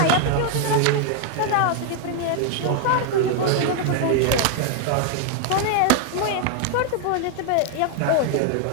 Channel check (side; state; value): both; different; correlation 0.00